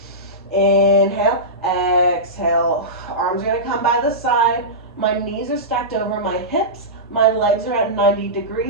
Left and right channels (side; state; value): both; normal; correlation -0.17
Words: Inhale, exhale. Arms are going to come by the side. My knees are stacked over my hips. My legs are at 90